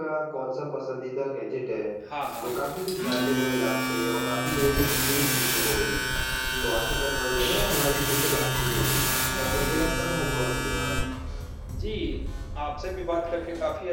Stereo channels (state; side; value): identical; both; correlation 1.00